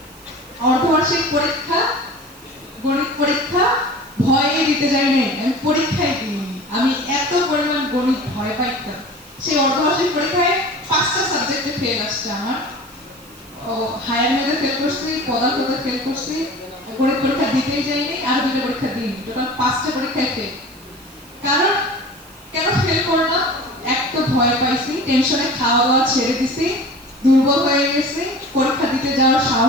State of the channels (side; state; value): right; noise; hiss, 23 dB below the sound